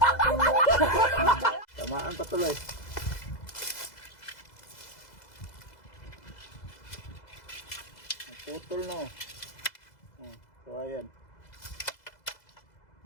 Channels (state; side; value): late; right; 2.0 ms